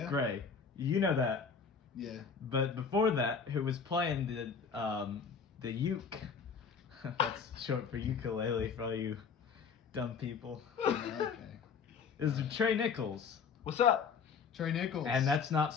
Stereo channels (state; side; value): quieter; right; 5.9 dB